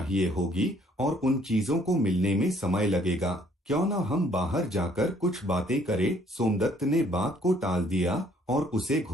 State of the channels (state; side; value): normal; both; correlation 0.62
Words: होगी और उन चीजों को मिलने में समय लगेगा। क्यों ना हम बाहर जाकर कुछ बातें करें? सोमदत्त ने बात को टाल दिया और उसे